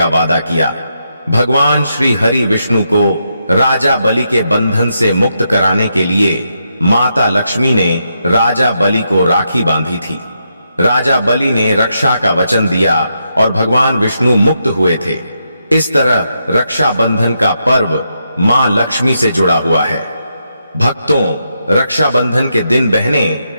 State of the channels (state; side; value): inverted; both; correlation -0.82